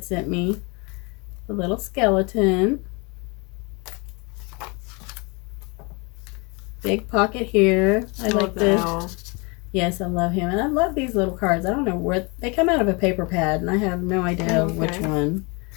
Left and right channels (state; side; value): quieter; right; 29.8 dB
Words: sent me. A little skeleton. Big pocket here. I like the Yes, I love him. And I love these little cards. I don't know where they come out of a paper pad, and I have no idea which one.